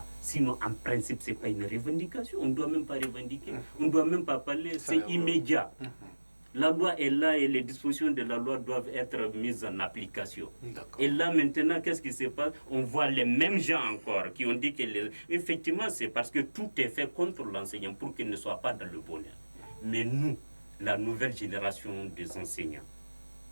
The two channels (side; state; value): both; inverted; correlation -1.00